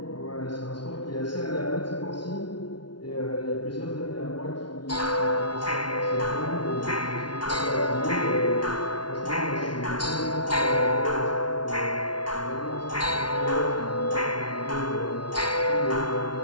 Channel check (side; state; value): right; late; 0.70 ms